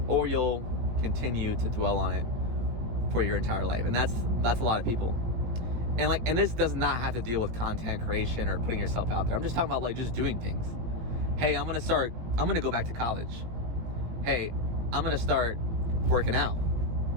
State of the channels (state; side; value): late; left; 18 ms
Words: or you'll continue to dwell on it for your entire life. And that's a lot of people. And this does not have to deal with content creation or putting yourself out there. I'm just talking about like just doing things. Hey, I'm gonna go back to college. Hey, I'm gonna start working out.